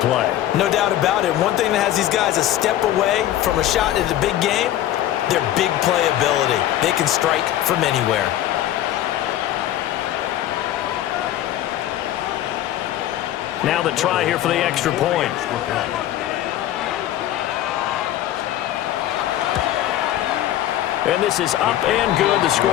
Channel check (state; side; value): quieter; right; 12.9 dB